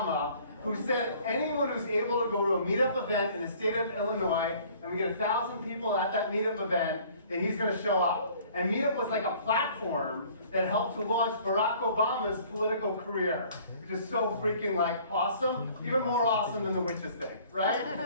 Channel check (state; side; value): inverted; both; correlation -0.54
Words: who said anyone who's able to go to a Meetup event in the state of Illinois, and we get 1,000 people at that Meetup event, then he's going to show up. And Meetup was like a platform that helped to launch Barack Obama's political career, which is so freaking awesome, even more awesome than the witches thing, right?